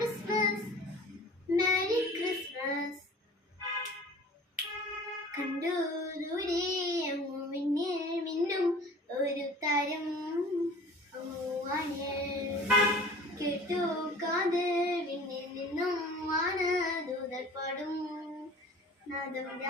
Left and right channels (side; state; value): both; normal; correlation 0.45